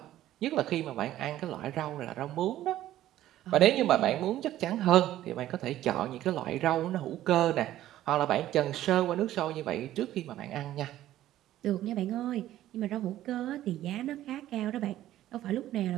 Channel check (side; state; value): left; quieter; 13.5 dB